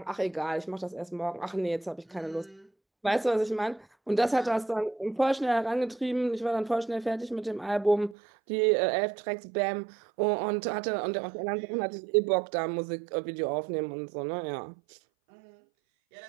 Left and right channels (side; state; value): left; drops out; at 8.2 s